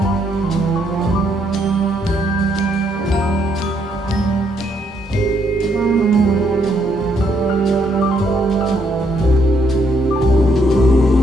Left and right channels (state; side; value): normal; both; correlation 0.72